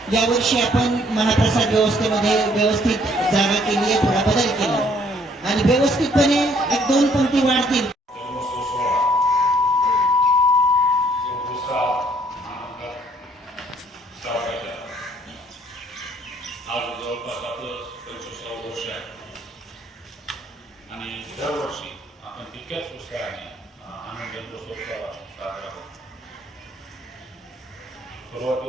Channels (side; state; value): both; normal; correlation 0.64